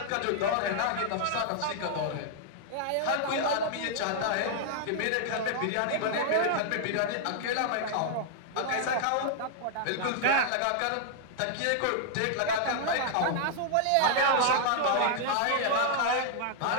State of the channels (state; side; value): different; both; correlation -0.01